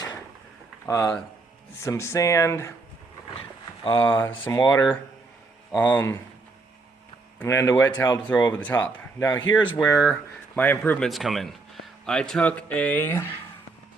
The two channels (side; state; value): left; quieter; 3.7 dB